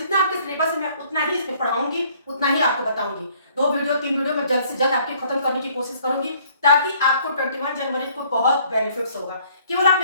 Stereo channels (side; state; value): both; inverted; correlation -0.60